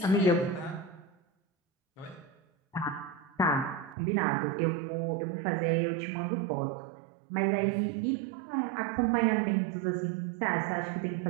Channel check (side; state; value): left; drops out; at 4.0 s